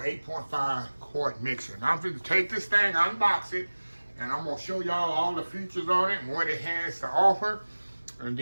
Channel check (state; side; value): inverted; both; correlation -1.00